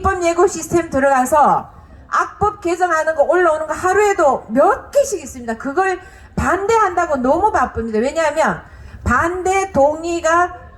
예고 시스템 들어가서 악법 개정하는 거 올라오는 거 하루에도 몇 개씩 있습니다. 그걸 반대한다고 너무 바쁩니다. 왜냐하면 반대 동의가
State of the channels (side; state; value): both; identical; correlation 1.00